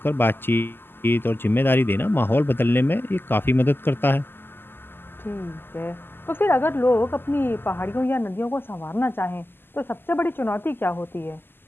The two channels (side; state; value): right; late; 0.10 ms